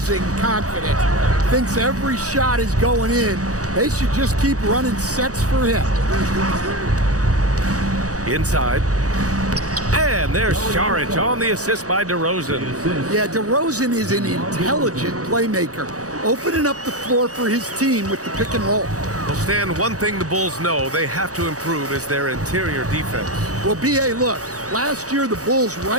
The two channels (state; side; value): late; left; 0.66 ms